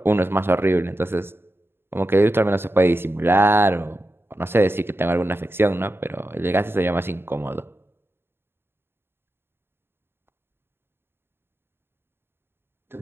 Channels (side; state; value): left; late; 0.11 ms